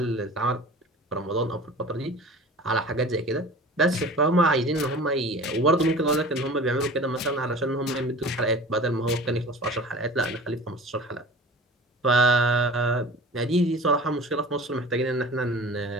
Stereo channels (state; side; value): normal; both; correlation 0.40